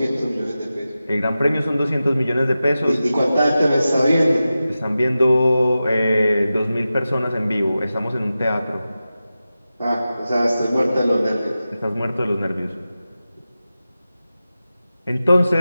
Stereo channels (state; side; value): inverted; both; correlation -0.93